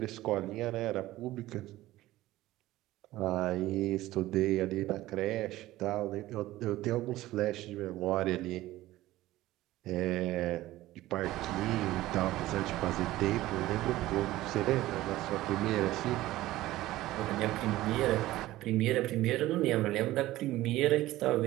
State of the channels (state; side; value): quieter; left; 16.3 dB